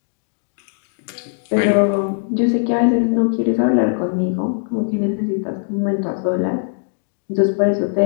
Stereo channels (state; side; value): silent; right; 66 dB below the other